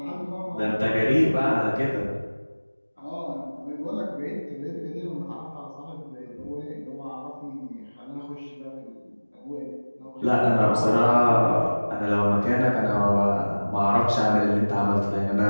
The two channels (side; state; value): both; inverted; correlation -1.00